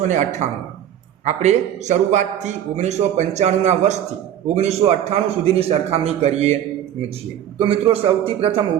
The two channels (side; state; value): left; quieter; 10.6 dB